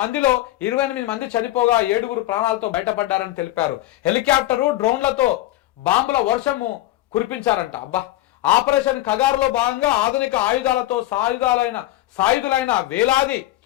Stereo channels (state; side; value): quieter; right; 15.7 dB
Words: మందిలో 28 మంది చనిపోగా 7గురు ప్రాణాలతో బయటపడ్డారని తెలిపారు. హెలికాప్టరు, డ్రోన్లతో బాంబుల వర్షము కురిపించారంట. ఆపరేషన్ కగారులో భాగంగా ఆధునిక ఆయుధాలతో సాయుధులైన వేలాది